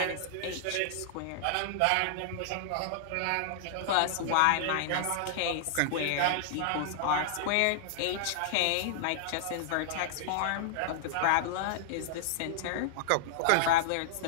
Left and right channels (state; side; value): different; both; correlation -0.01